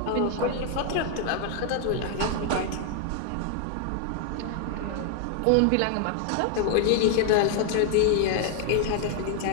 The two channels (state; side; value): different; both; correlation 0.00